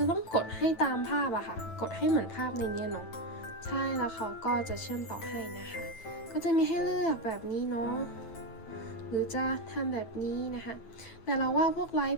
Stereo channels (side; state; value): right; late; 9.1 ms